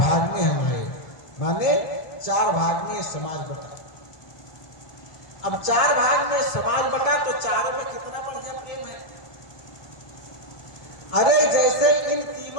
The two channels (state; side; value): late; right; 1.4 ms